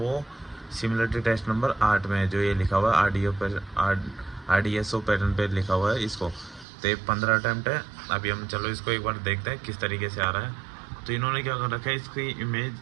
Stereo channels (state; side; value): drops out; left; at 6.7 s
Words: सिमिलरिटी टेस्ट नंबर 8 में है, जो ये लिखा हुआ है RDSO पैटर्न पे लिखा हुआ है इसको। तो ये 15 अटैम्प्ट है। अभी हम चलो इसको एक बार देखते हैं किस तरीके से आ रहा है। तो इन्होंने क्या कर रखा है, इसकी इमेज